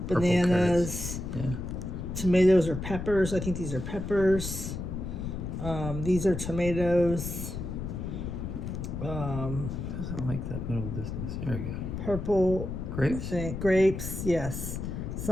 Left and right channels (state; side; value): noise; left; rumble, 5 dB below the sound